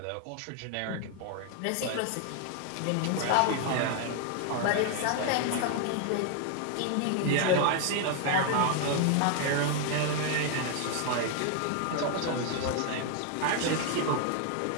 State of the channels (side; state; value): both; different; correlation 0.00